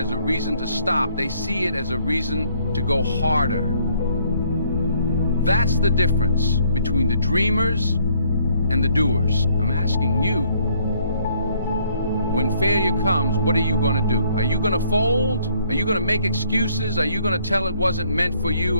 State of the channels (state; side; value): inverted; both; correlation -0.66